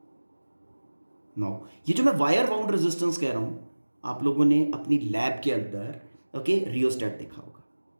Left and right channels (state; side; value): inverted; both; correlation -1.00